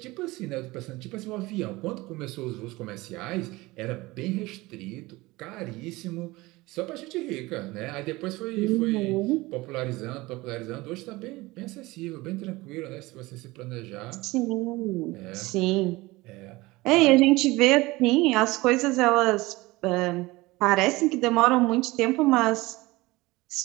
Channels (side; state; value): left; quieter; 20.8 dB